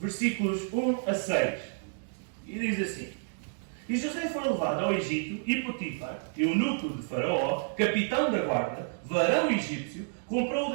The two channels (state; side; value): silent; left; digital silence